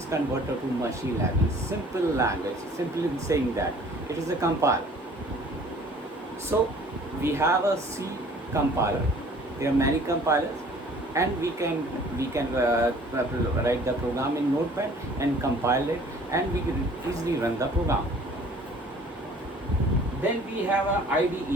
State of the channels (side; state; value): both; normal; correlation 0.52